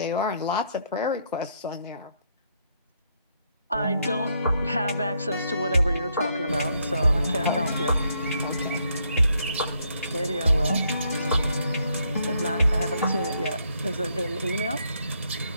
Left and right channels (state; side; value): inverted; both; correlation -0.74